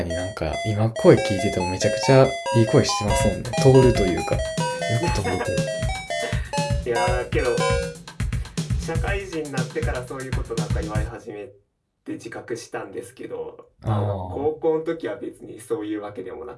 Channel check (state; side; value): identical; both; correlation 1.00